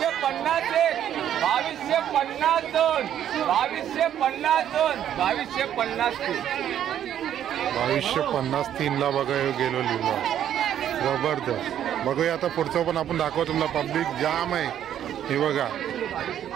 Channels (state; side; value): quieter; left; 10.4 dB